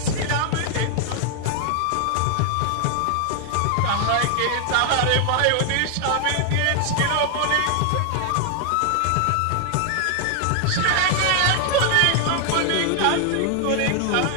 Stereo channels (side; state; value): both; different; correlation 0.00